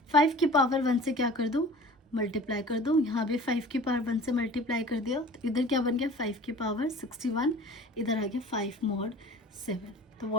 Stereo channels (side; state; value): both; normal; correlation 0.43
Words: 5 की पावर 1 से क्या कर दूँ मल्टीप्लाई कर दो, यहाँ भी 5 की पावर 1 से मल्टीप्लाई कर दिया, तो इधर क्या बन गया 5 की पावर 61, इधर आ गया 5 मॉड 7। तो